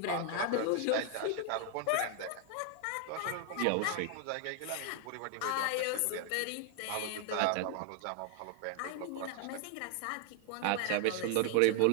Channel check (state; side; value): different; both; correlation 0.00